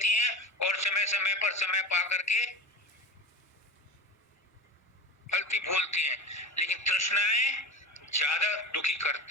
हैं और समय समय पर समय पा करके फलती फूलती हैं, लेकिन तृष्णाएं ज्यादा दुखी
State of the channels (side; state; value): both; normal; correlation 0.28